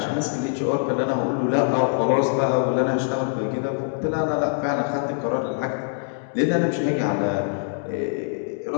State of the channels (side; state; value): right; silent; 63 dB below the other